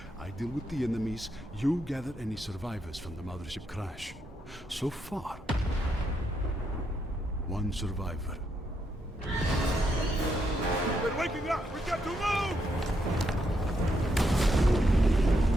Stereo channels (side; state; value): both; normal; correlation 0.79